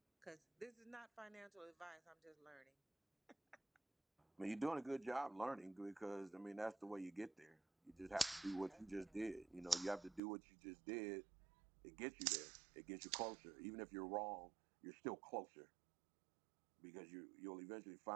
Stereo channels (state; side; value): drops out; left; at 10.2 s